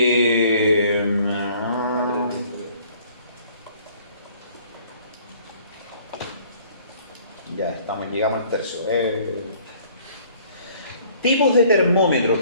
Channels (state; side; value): inverted; both; correlation -0.57